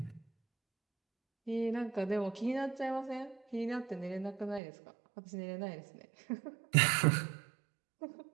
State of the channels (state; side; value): drops out; left; at 4.6 s